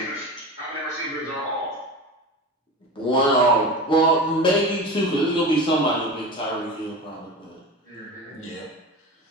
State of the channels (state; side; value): normal; both; correlation 0.29